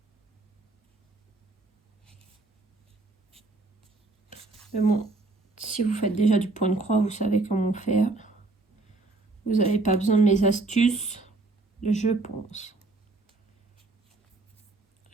Mais bon, si vous faites déjà du point de croix, vous savez comment faire. Vous n'avez pas besoin de mes astuces, je pense.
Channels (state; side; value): quieter; left; 3.3 dB